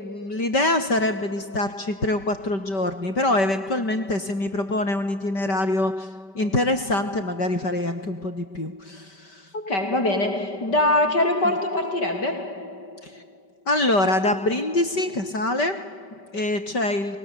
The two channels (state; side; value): late; right; 5.2 ms